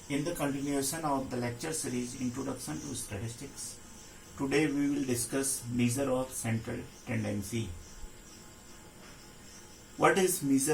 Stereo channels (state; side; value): identical; both; correlation 1.00